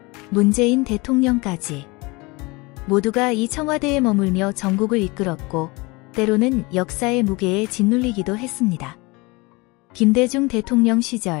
문재인 대통령까지 모두가 이 청와대에 머물며 전국을 이끌었고, 때로는 역사의 무게에 짓눌리기도 했습니다. 김대중 대통령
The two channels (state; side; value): quieter; right; 25.2 dB